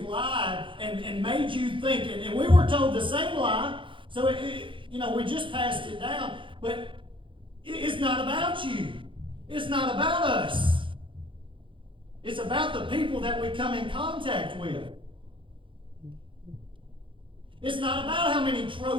lied and made you think, and we were told the same lie, so we just passed it down, but it's not about you. It's not about us. It's about the people that we come in contact with. It's not about how many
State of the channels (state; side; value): late; left; 0.25 ms